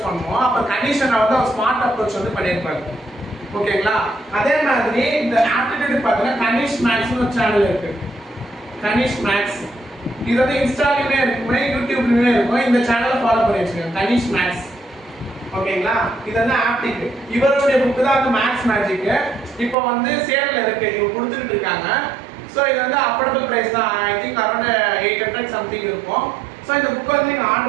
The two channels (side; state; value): left; drops out; at 19.8 s